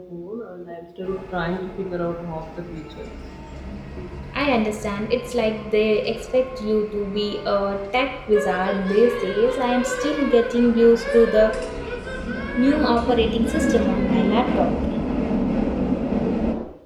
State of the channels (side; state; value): both; identical; correlation 1.00